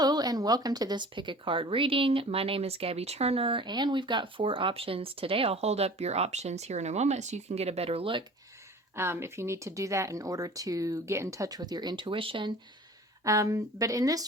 and welcome to this pick a card reading. My name is Gabby Turner and we've got 4 options today. I'll hold up your options here in a moment so you can get a better look if you need to do that in order to get in touch with your intuition. But in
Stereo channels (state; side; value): normal; both; correlation 0.43